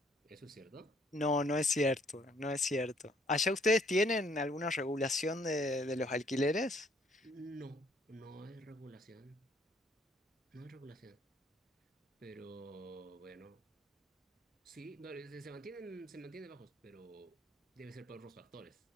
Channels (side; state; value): both; normal; correlation 0.63